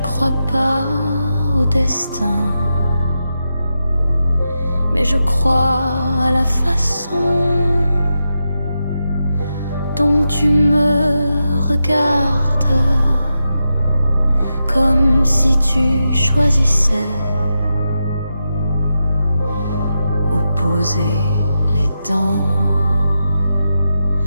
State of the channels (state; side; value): inverted; both; correlation -0.87